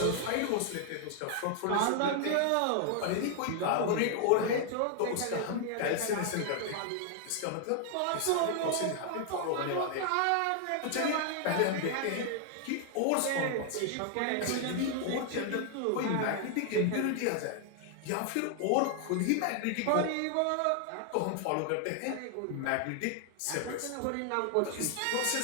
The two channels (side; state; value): both; different; correlation 0.00